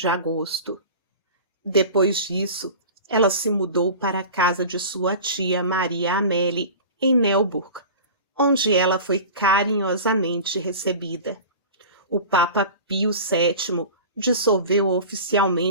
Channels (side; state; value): both; inverted; correlation -0.36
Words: agosto. Depois disso, ela se mudou para a casa de sua tia Maria Amélie, em Neuburg, onde ela foi carinhosamente recebida. O Papa Pio VII dissolveu